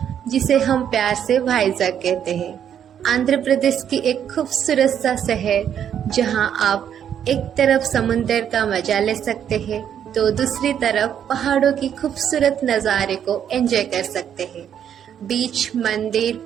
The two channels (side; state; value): left; quieter; 9.1 dB